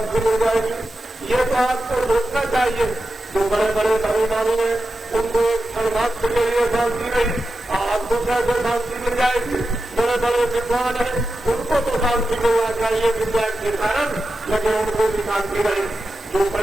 मिल जाएगी? ये तो आपको रोकना चाहिए। जो बड़े बड़े धर्ममानी हैं उनको एक क्षण मात्र के लिए शांति नहीं, आपको कैसे शांति मिल जाएगी? बड़े बड़े विद्वान हैं उनको तो शांति मिलना चाहिए विद्या के कारण, लेकिन उनको भी शांति नहीं। जो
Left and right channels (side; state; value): both; normal; correlation 0.91